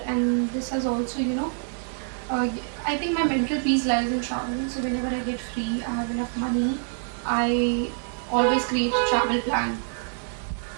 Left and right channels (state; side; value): silent; left; 59 dB below the other